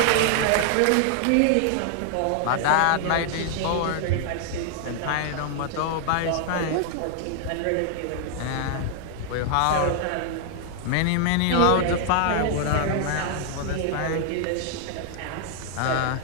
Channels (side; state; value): both; different; correlation 0.00